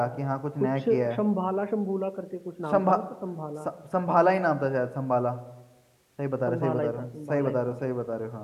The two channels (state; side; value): identical; both; correlation 1.00